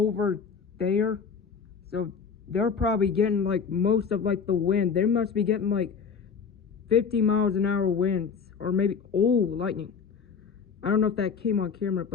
there, so they're probably getting like most of like the wind. They must be getting like 50 miles an hour winds, or maybe, oh, lightning. I don't know if that came on camera,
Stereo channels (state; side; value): quieter; right; 6.1 dB